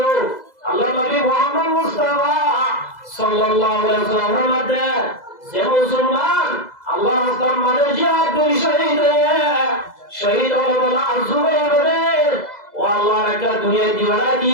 আল্লাহ নবী মুহাম্মদ মুস্তাফা সাল্লাল্লাহু আলাইহি ওয়াসাল্লামের মধ্যে যে মুসলমান আল্লাহ রাস্তার মাঝে জিহাদ করে শহীদ হলো বলা জুবাইর ও আল্লাহ একটা দুনিয়া দিওয়ানা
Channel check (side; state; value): right; late; 2.0 ms